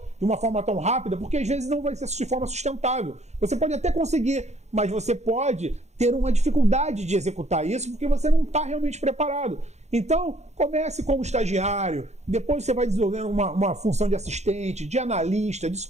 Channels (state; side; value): late; left; 0.33 ms